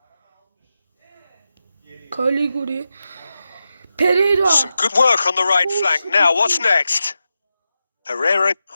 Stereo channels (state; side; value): inverted; both; correlation -0.90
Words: Caliguri. Pereira. Some good work on the right flank. Now, what's next? Herrera